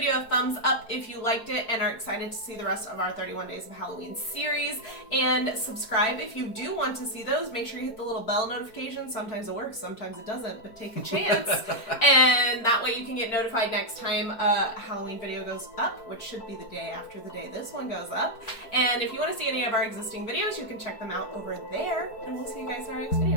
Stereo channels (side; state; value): right; late; 4.5 ms